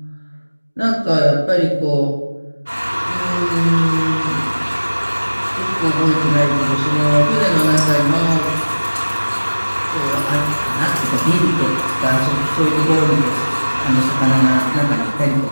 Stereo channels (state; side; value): inverted; both; correlation -1.00